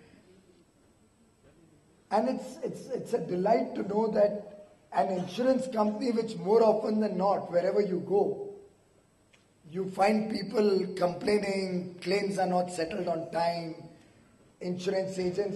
And it's a delight to know that an insurance company which more often than not, wherever you go, you find people complaining, claims are not settled on time, insurance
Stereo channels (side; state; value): both; identical; correlation 1.00